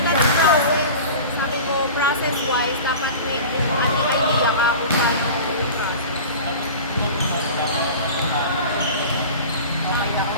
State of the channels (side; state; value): both; inverted; correlation -0.36